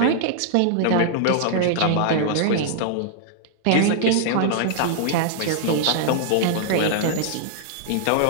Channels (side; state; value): both; different; correlation -0.01